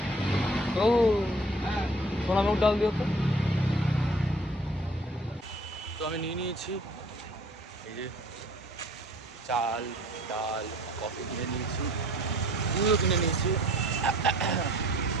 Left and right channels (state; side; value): normal; both; correlation 0.52